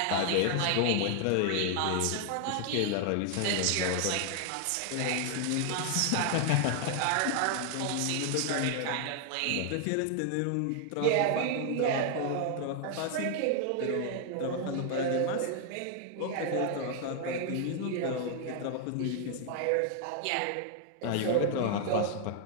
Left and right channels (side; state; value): both; different; correlation 0.00